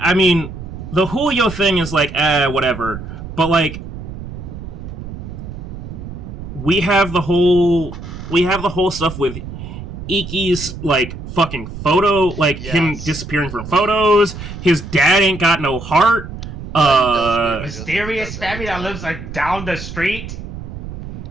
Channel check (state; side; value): noise; right; rumble, 10 dB below the sound